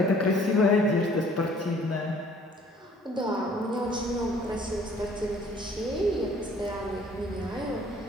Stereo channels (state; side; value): normal; both; correlation 0.56